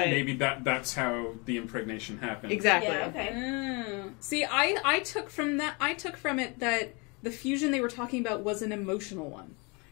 maybe that's how the impregnation happened. Exactly. Yeah, okay. See, I took from it that the fusion they were talking about was an emotional one.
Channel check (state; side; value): quieter; right; 30.0 dB